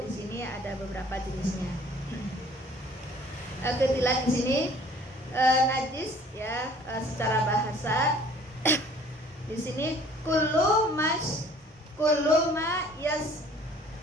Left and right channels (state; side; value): normal; both; correlation 0.53